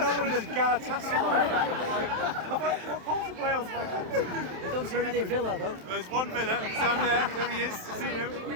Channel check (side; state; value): left; late; 27 ms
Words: one of those Galatasaray fans. What part of Wales have I come to? You don't see many Villa though. There's one Villa, he's down there, there he is, see him.